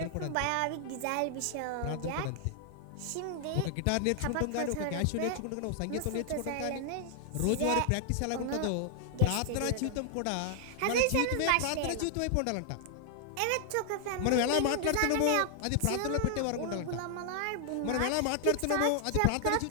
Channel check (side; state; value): both; different; correlation 0.00